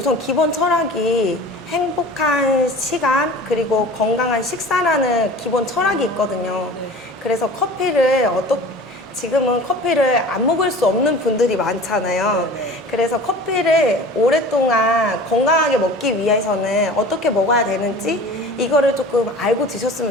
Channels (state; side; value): normal; both; correlation 0.41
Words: 기본 철학이 행복한 시간 그리고 건강한 식사라는 기본 철학이 있거든요. 그래서 지금은 커피를 안 먹을 수 없는 분들이 많잖아요. 그래서 커피를 오랫동안 건강하게 먹기 위해서는 어떻게 먹어야 되는지 이거를 조금 알고